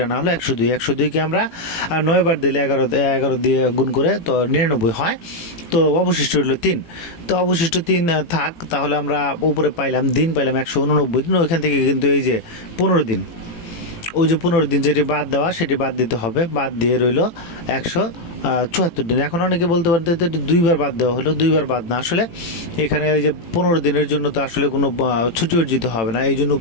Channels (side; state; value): right; late; 18 ms